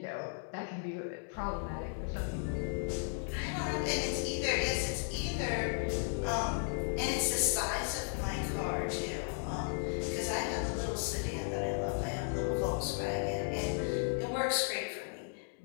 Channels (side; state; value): right; silent; 54 dB below the other